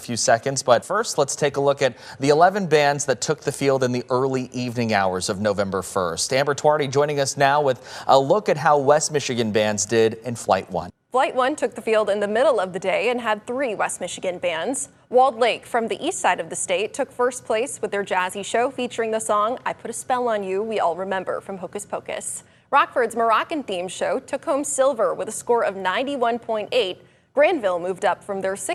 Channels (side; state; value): both; identical; correlation 1.00